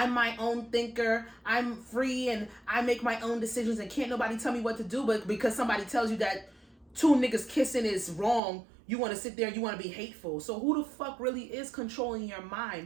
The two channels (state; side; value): drops out; left; at 8.4 s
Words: my own thinker, I'm free and I make my own decisions and can't nobody tell me what to do. But because somebody tells you that two niggas kissing is wrong, you want to sit there and you want to be hateful. So who the fuck really is controlling your